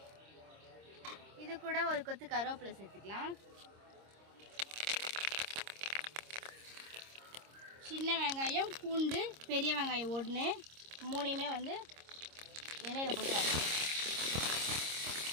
இது கூட ஒரு கொத்து கருவேப்பிலை சேர்த்துக்கலாம். சின்ன வெங்காயம், பூண்டு, பெரிய வெங்காயம் 1 3மே வந்து எண்ணெயில் போட்டு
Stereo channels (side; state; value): left; late; 26 ms